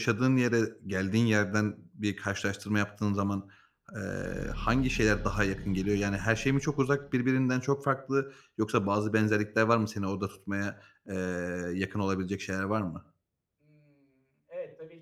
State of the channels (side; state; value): both; identical; correlation 1.00